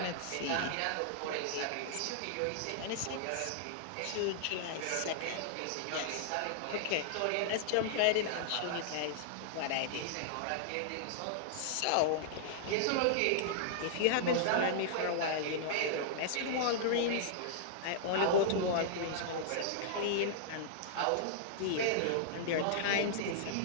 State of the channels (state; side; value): different; both; correlation -0.01